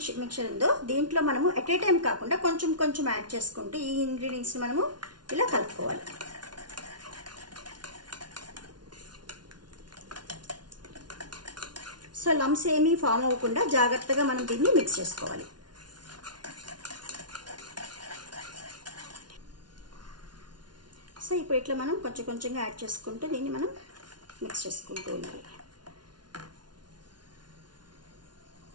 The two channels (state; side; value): late; left; 0.70 ms